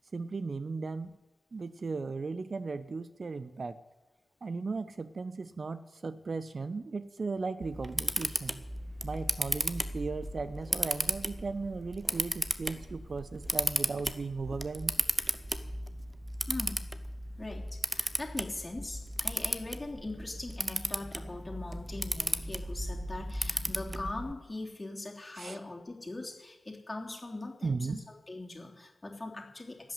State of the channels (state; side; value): normal; both; correlation 0.97